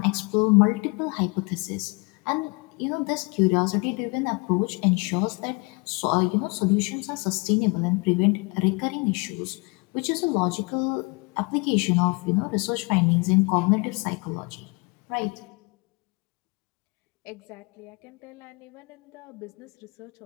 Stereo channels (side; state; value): right; quieter; 29.8 dB